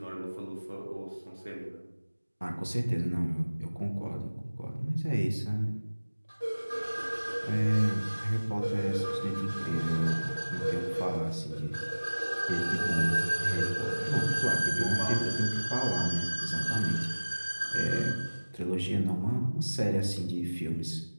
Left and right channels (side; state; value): both; inverted; correlation -1.00